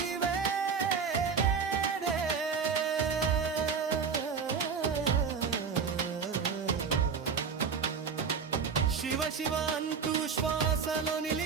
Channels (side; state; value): left; quieter; 5.9 dB